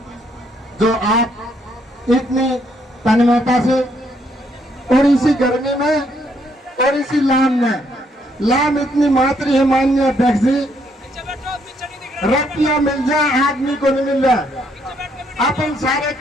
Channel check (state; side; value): normal; both; correlation 0.71